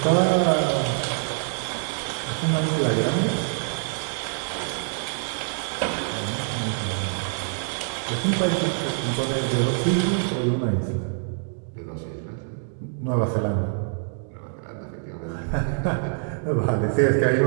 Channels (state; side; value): silent; left; digital silence